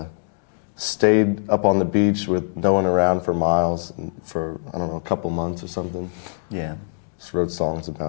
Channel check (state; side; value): silent; right; digital silence